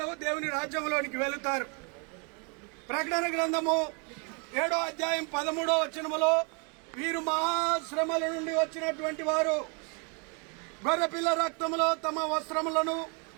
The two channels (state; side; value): quieter; left; 33.1 dB